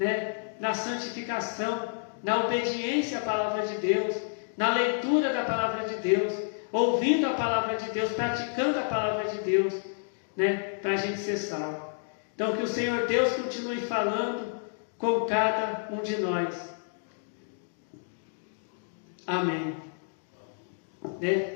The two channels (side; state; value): right; silent; digital silence